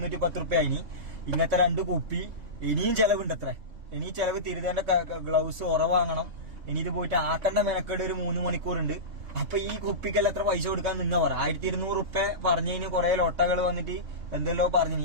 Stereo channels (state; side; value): late; left; 3.6 ms